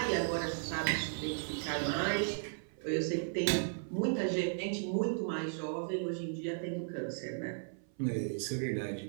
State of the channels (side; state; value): left; silent; 54 dB below the other